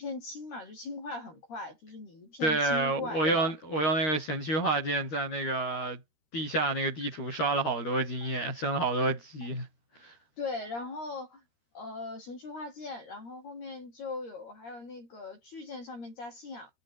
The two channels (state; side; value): late; right; 13 ms